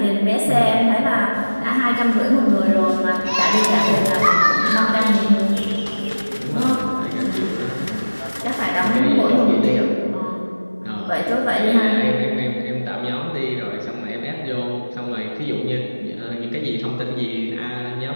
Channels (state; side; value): inverted; both; correlation -1.00